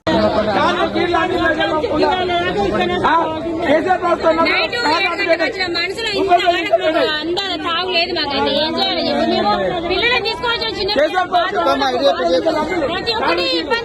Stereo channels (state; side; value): identical; both; correlation 1.00